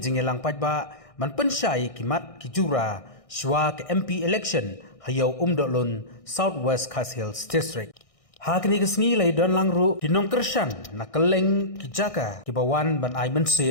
pajba man pensyai kimat ki jura shwa ke MP election hayau umdolun Southwest Khas Hills District. Hakni kesni lai don langru dinong kersan na keleng ki jaka ki bawan ban ai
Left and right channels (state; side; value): late; right; 1.6 ms